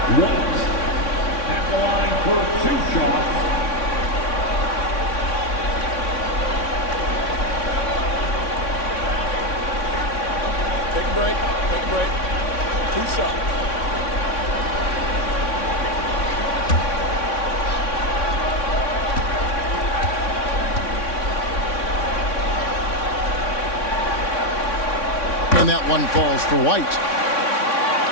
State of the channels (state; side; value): late; right; 3.6 ms